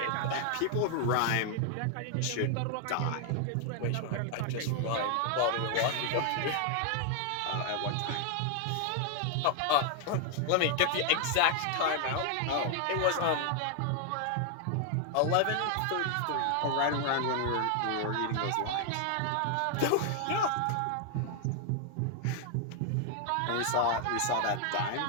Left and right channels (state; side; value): different; both; correlation 0.00